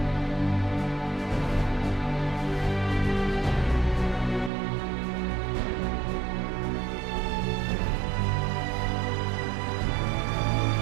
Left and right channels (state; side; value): drops out; left; at 4.5 s